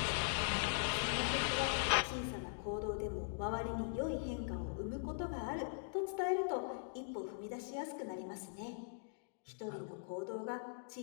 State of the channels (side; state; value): right; silent; digital silence